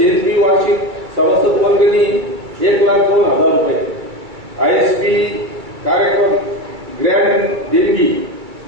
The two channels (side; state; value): left; late; 2.3 ms